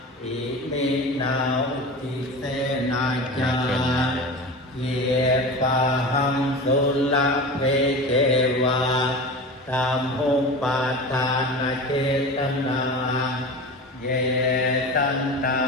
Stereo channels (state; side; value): normal; both; correlation 0.31